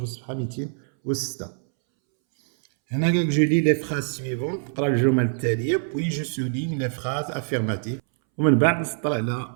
الصفحة 206. هنا قالك جو لي لي فراز سويفون، نقرا الجمل التالية بوي جو سوليغ لي فراز افيرماتيف، ومن بعد نسطر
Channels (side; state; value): left; silent; 62 dB below the other